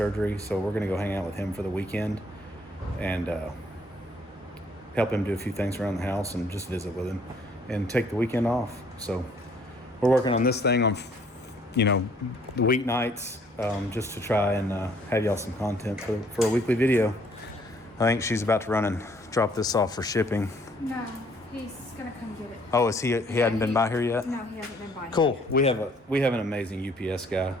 so we're gonna go hang out with him for the weekend and help him do a few things around the house and just visit with him and take the weekend off. So we're working on this thing on, you know, the weeknights, just to try and have y'all some content for a weekly video. I think she's about to run and drop this off for shipping. No, he's gonna come get it. Oh, is he hadn't been by here yet? No, he hasn't been by. Cool. We have an amazing UPS guy,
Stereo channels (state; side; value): normal; both; correlation 0.62